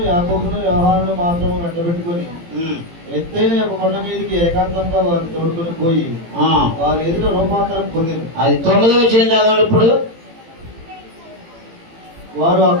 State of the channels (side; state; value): left; late; 18 ms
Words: యాకోబును, యోహానును మాత్రము వెంటబెట్టుకొని ఎత్తైన ఒక కొండ మీదకి ఏకాంతంగా వారిని తోడుకొని పోయి వారి ఎదుట రూపాంతరం పొందింది. అది 9వ వచనం చదవండి. ఇప్పుడు వారు ఆ